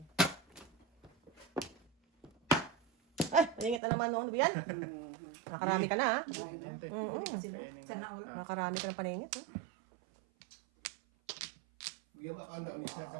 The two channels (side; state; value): left; drops out; at 3.8 s